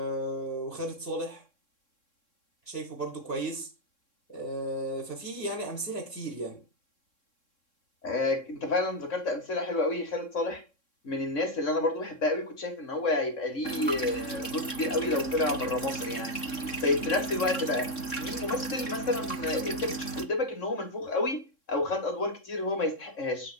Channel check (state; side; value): late; right; 3.6 ms